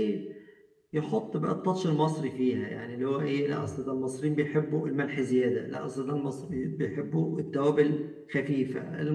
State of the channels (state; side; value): identical; both; correlation 1.00